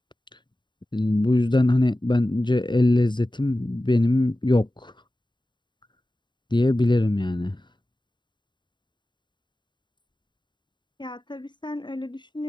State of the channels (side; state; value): right; late; 0.22 ms